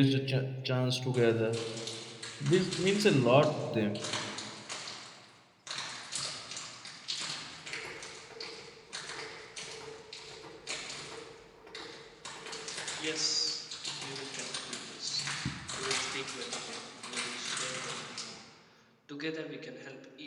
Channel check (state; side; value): identical; both; correlation 1.00